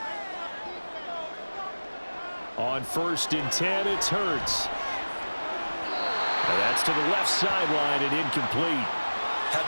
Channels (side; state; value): both; inverted; correlation -1.00